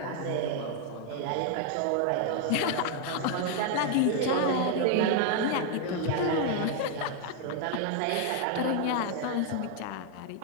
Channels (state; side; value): different; both; correlation 0.00